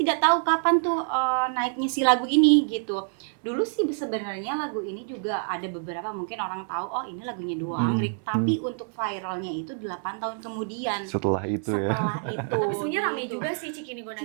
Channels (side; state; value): left; silent; 60 dB below the other